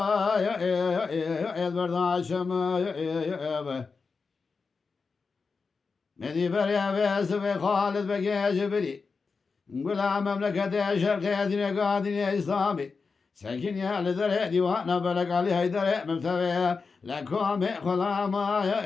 مدي بريا بيس خالد بقي جبري نقول مملكة شرقية دين قادين إسلامي ساكن يا لذر ديوانا بلق علي هيدر ممتوي لكم خلاما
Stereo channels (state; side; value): quieter; right; 4.7 dB